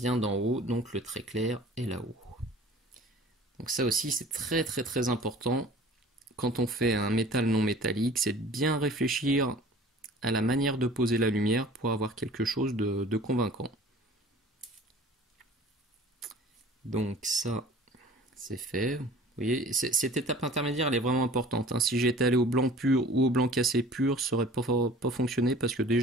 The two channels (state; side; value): normal; both; correlation 0.46